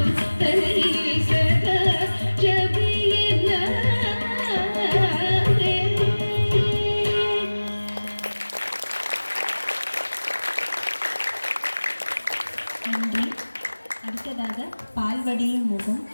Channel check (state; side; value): inverted; both; correlation -1.00